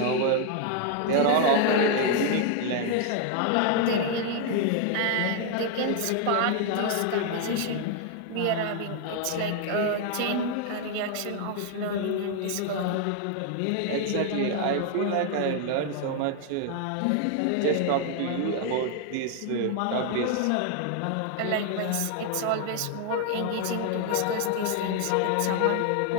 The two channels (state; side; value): different; both; correlation 0.00